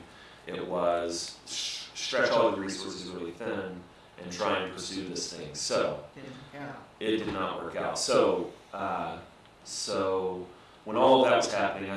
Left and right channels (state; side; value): identical; both; correlation 1.00